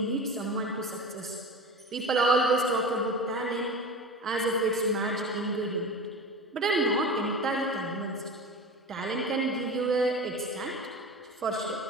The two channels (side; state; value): both; normal; correlation 0.31